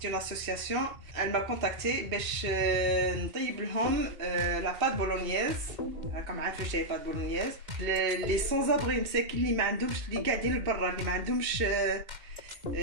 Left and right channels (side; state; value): left; late; 2.0 ms